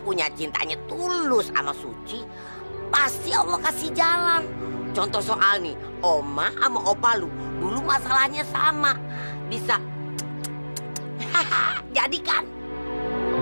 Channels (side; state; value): both; inverted; correlation -1.00